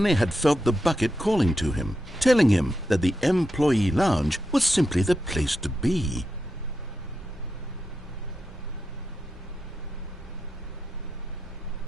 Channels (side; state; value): both; normal; correlation 0.87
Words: had felt the bucket calling to him, telling him that the employee lounge was simply the place to be.